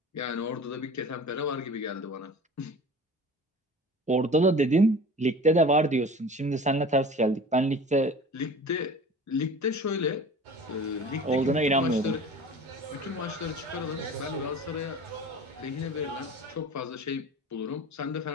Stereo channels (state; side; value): normal; both; correlation 0.40